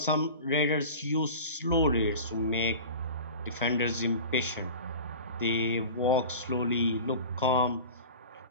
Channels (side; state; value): both; inverted; correlation -0.36